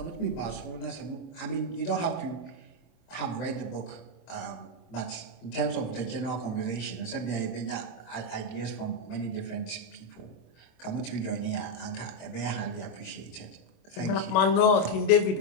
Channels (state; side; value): late; right; 27 ms